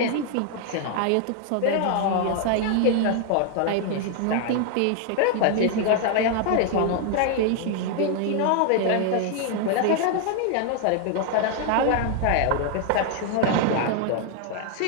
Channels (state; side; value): different; both; correlation 0.00